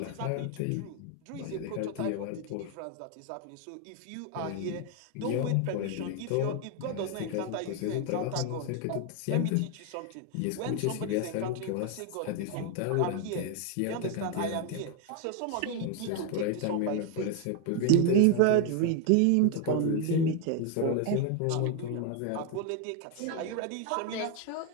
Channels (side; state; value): both; different; correlation 0.01